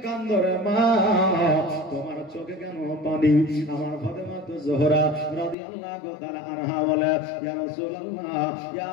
কাঁদো রে মা, তোমার চোখে কেন পানি? আমার ফাতেমা জোহরা রাদিয়াল্লাহু তাআলা আনহা বলে, ইয়া রাসূলুল্লাহ, ইয়া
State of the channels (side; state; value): right; drops out; at 5.6 s